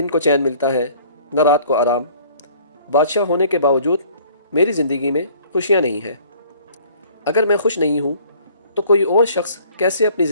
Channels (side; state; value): both; inverted; correlation -0.54